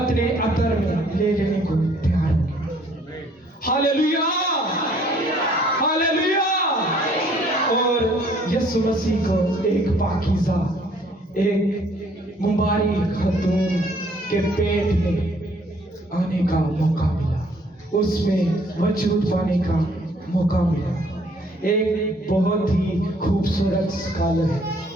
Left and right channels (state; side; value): normal; both; correlation 0.61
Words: अतर में ले लेने को तैयार हो। Hallelujah, hallelujah. और यीशु मसीह को एक पाकीज़ा, एक मुबारक खतून के पेट में आने का मौका मिला, उसमें वजूद पाने का मौका मिला। एक बहुत ही खूबसूरत स्कॉलर है,